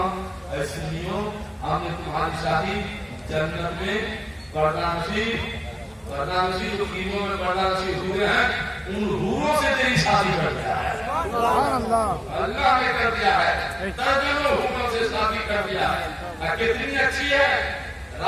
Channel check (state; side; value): identical; both; correlation 1.00